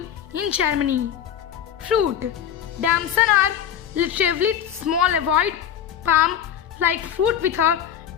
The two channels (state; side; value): quieter; right; 9.5 dB